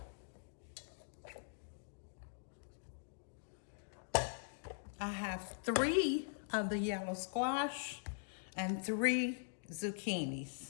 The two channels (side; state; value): right; silent; digital silence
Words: I have 3 of the yellow squash and 3 zucchinis.